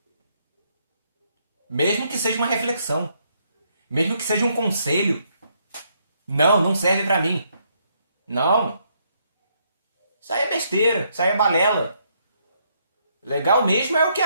Mesmo que seja uma reflexão, mesmo que seja um conselho. Não, não serve pra mim. Não. Isso aí é besteira, isso aí é balela. Legal mesmo é o que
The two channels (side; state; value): both; inverted; correlation -0.73